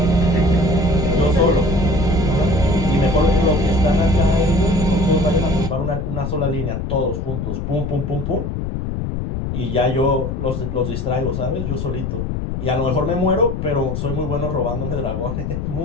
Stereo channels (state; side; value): noise; left; rumble, 4 dB below the sound